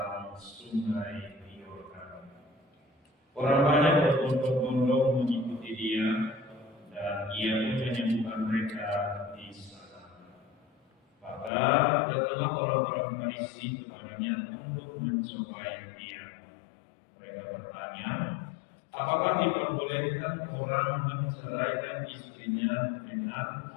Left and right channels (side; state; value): right; drops out; at 11.5 s